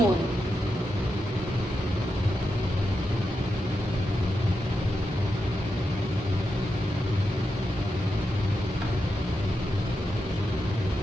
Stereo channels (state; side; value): normal; both; correlation 0.87